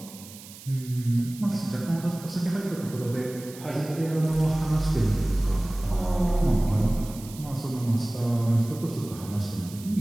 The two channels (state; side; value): noise; right; hiss, 17 dB below the sound